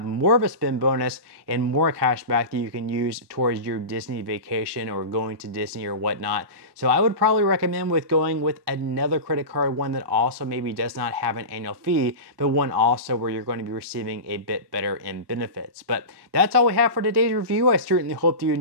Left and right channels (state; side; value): late; left; 1.2 ms